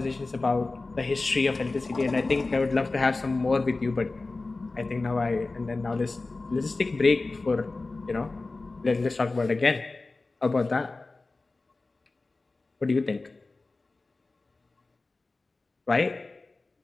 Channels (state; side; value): quieter; right; 3.4 dB